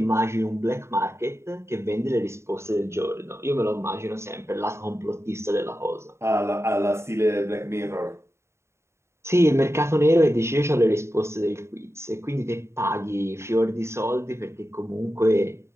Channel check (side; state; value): left; late; 0.13 ms